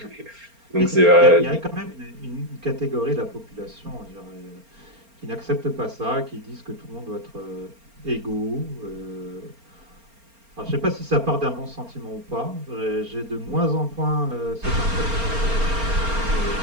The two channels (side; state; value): left; late; 4.3 ms